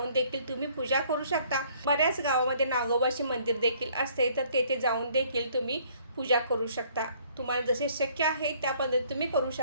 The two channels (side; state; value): both; inverted; correlation -0.60